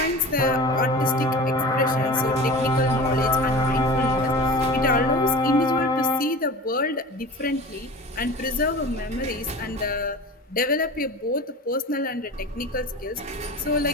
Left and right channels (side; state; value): both; normal; correlation 0.35